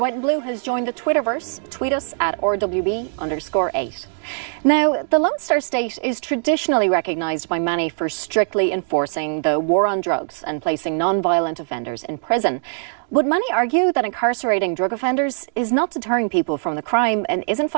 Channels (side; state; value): left; silent; 65 dB below the other